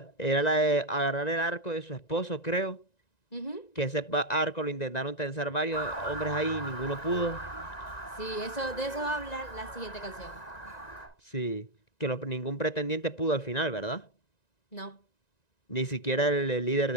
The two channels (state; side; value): late; right; 1.9 ms